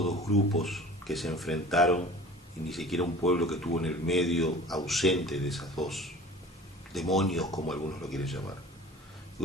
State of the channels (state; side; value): normal; both; correlation 0.42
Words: dos grupos que se enfrentaron y ni siquiera un pueblo que estuvo en el medio ausente de esas dos demonios, como algunos lo quieren llamar.